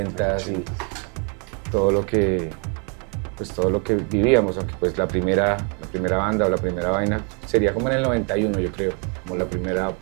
y todo lo que vivíamos, aunque pues la primera banda o la primera vaina sería como en el 91, yo creo, como la primera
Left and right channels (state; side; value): quieter; left; 38.0 dB